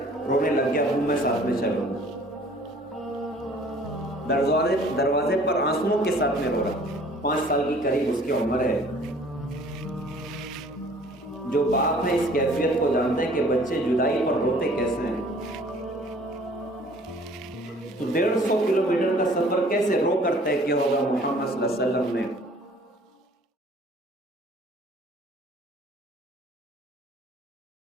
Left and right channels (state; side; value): normal; both; correlation 0.53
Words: رونے لگ گیا، ابو میں ساتھ میں چلوں گا۔ دروازے پر آنسوؤں کے ساتھ میں رو رہا، 5 سال کی قریب اس کی عمر ہے۔ جو باپ ہے اس کیفیت کو جانتے ہیں کہ بچے جدائی پر روتے کیسے ہیں۔ تو 150 کلومیٹر کا سفر کیسے رو کر طے کیا ہوگا محمد صلی اللہ علیہ وسلم نے۔